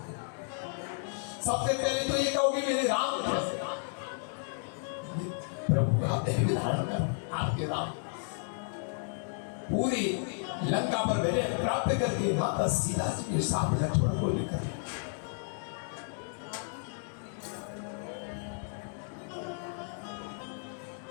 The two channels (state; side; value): silent; right; 56 dB below the other